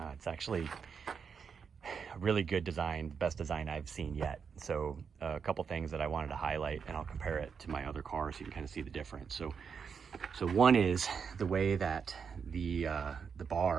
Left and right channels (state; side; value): quieter; left; 6.3 dB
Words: It's actually a really good design, best design I've seen yet. So a couple things that I wanted to highlight, and I'll compare it to my other car so you can kind of see the difference. So one is the way that the